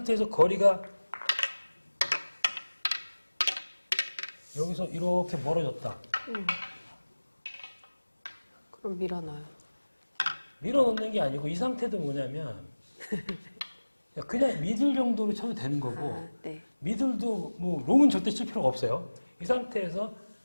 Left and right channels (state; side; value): inverted; both; correlation -1.00